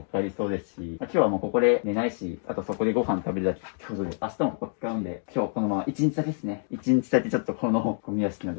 かかりそうですし、今日はもうここで寝ないし、あとそこでご飯食べるだけってことで、明日もここ使うんで、今日このまま1日だけですね。1日だけちょっとこのゴミ屋敷の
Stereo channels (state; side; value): silent; right; 60 dB below the other